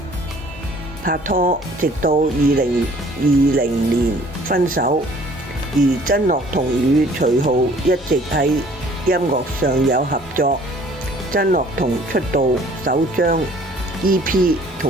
拍拖，直到2020年分手。而曾樂彤與徐浩一直喺音樂上有合作。曾樂彤出道首張 EP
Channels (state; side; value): normal; both; correlation 0.55